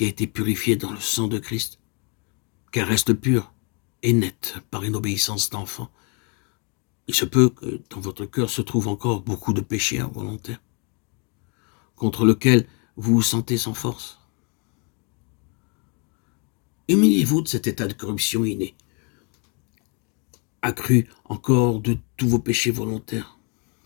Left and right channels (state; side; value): quieter; right; 35.0 dB